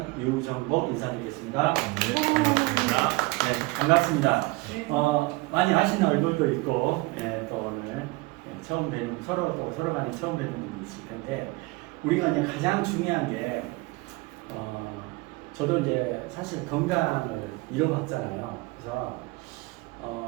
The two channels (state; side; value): quieter; left; 23.6 dB